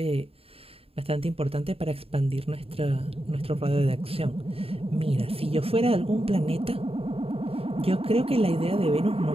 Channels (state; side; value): late; left; 0.28 ms